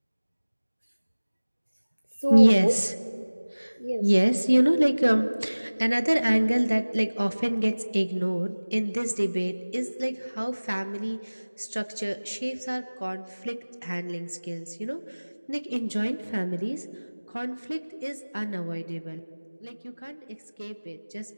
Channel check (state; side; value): inverted; both; correlation -1.00